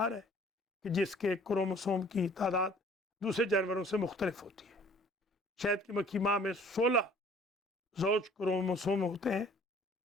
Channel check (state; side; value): normal; both; correlation 0.54